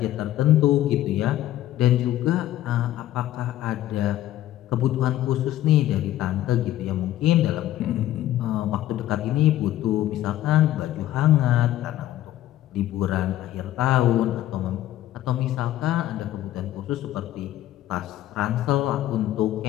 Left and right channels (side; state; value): right; quieter; 13.6 dB